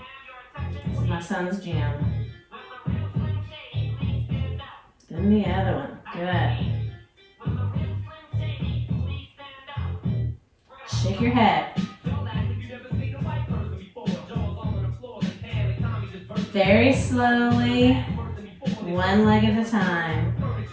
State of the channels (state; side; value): identical; both; correlation 1.00